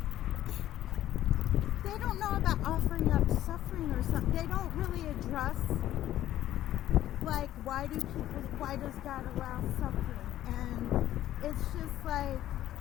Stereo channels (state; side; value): quieter; right; 13.1 dB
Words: they don't know about offering up suffering or something. They don't really address like why does God allow suffering? And it's just like,